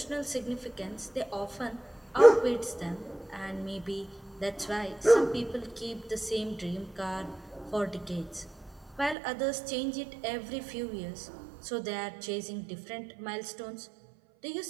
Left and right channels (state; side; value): drops out; left; at 9.2 s